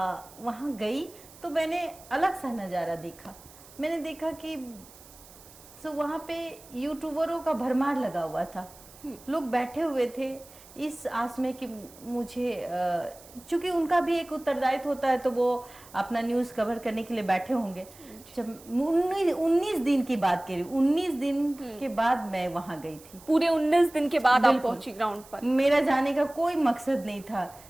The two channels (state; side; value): noise; right; hiss, 22 dB below the sound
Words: वहाँ गई तो मैंने अलग सा नज़ारा देखा। मैंने देखा कि वहाँ पे यूट्यूबरों का भरमार लगा हुआ था। लोग बैठे हुए थे इस आस में कि मुझे, चूंकि उनका भी एक उत्तरदायित्व होता है तो वो अपना न्यूज़ कवर करने के लिए बैठे होंगे। जब 19 दिन की बात करी, 19 दिन के बाद मैं वहाँ गई थी। पूरे 19 दिन के बाद आप पहुंची ग्राउंड पर। मेरा जाने का कोई मकसद नहीं था,